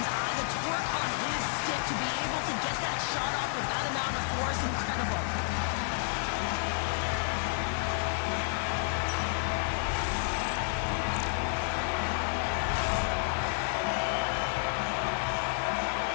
The torque on his stick to be able to get that shot off with that amount of force, incredible.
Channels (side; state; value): right; silent; 57 dB below the other